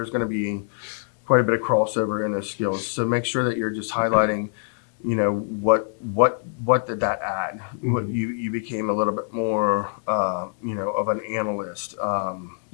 going to be quite a bit of crossover in those skills. So make sure that you're just highlighting, what did that add? Mhm. What you became a little bit more, of an analyst.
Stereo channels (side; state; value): right; silent; digital silence